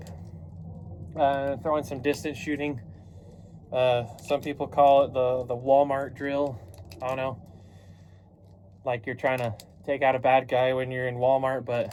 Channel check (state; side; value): identical; both; correlation 1.00